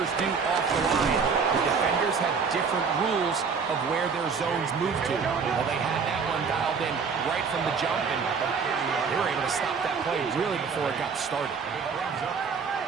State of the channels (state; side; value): quieter; left; 5.6 dB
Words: do off the line, the defenders have different rules of where their zones move to. Well, they had that one dialed in right from the jump, and they were able to stop that play really before it got started.